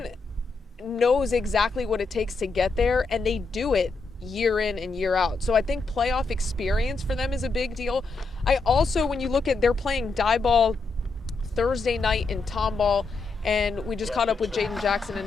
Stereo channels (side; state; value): right; quieter; 3.9 dB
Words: knows exactly what it takes to get there, and they do it year in and year out. So I think playoff experience for them is a big deal. I also, when you look at, they're playing die ball Thursday night in Tomball, and we just caught up with Jaden Jackson